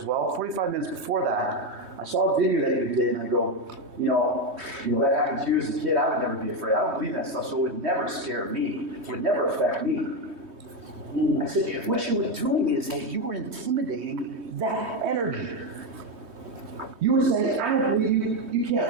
well, 45 minutes before that, I saw a video that you did, and I go, you know, that happened to you as a kid. I would never be afraid. I don't believe in that stuff, so it would never scare me. It would never affect me. I said, what you were doing is that you were intimidating that energy. You were saying, I don't believe you. You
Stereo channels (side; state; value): left; late; 3.2 ms